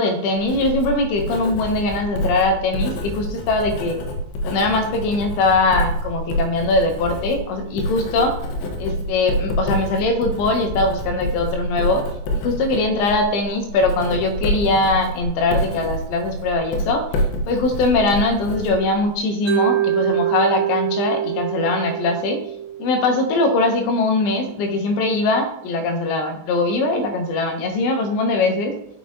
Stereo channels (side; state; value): right; late; 20 ms